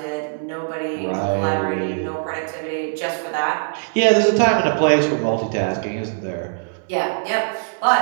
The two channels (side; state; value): left; silent; digital silence